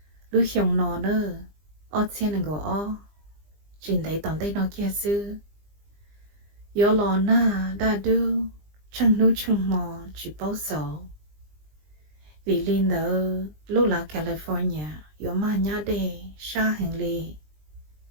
lúc xong nó nữa ở trên là gõ chuyện đấy toàn đây nó kia xưa gió lò na đã đưa chân núi chân mò chỉ bao sầu vì linh đó lúc là California gió mà nhá đề xa hàng lì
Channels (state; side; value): late; left; 20 ms